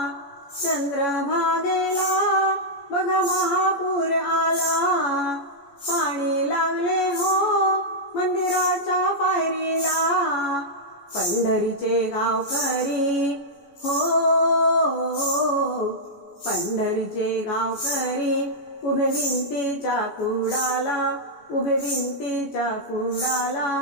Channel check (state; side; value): late; right; 14 ms